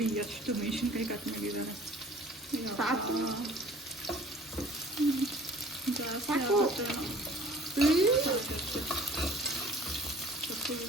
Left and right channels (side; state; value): both; normal; correlation 0.50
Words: ಎಷ್ಟು ಮೆಣಸಿನ್ಕಾಯಿ ಕಟ್ ಮಾಡಿದ್ದಾರೆ. ಸಾಕು